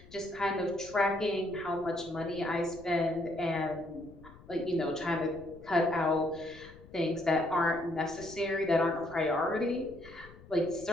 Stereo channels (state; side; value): noise; left; rumble, 20 dB below the sound